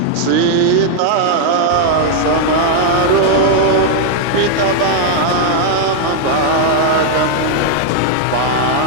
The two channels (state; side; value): different; both; correlation 0.00